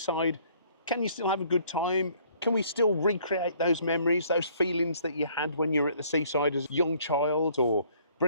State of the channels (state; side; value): inverted; both; correlation -0.61